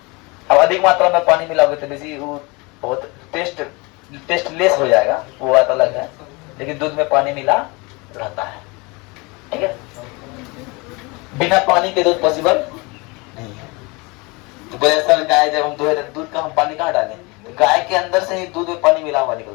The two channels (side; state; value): right; quieter; 26.8 dB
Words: अब अधिक मात्रा में पानी मिला होगा तो बेसी वो बहुत टेस्टलेस हो जाएगा, वो बात अलग है, लेकिन दूध में पानी मिला रहता है, ठीक है। बिना पानी के दूध पॉसिबल नहीं है। तो सर गाय जब हम दुहे दूध का हम पानी कहाँ डालें? तो गाय के अंदर से ही दूध में पानी मिला हुआ